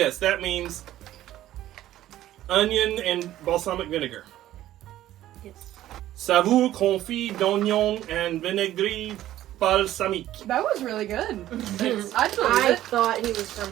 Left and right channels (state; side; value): quieter; left; 13.6 dB